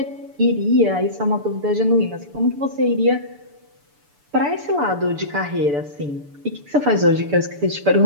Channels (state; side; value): late; left; 6.9 ms